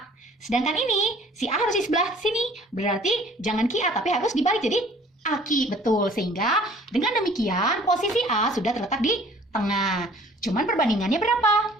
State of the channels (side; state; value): both; normal; correlation 0.53